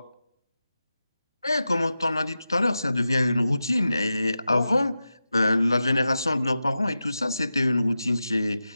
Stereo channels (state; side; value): inverted; both; correlation -0.92